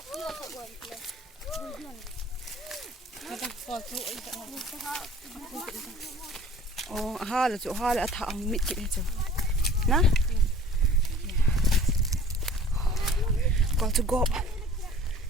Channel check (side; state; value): both; normal; correlation 0.48